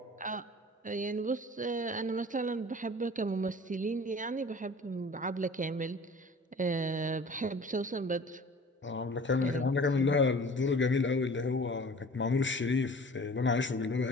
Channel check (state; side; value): normal; both; correlation 0.44